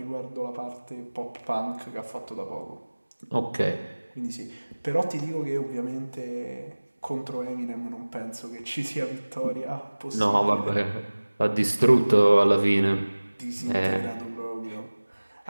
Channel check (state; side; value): inverted; both; correlation -1.00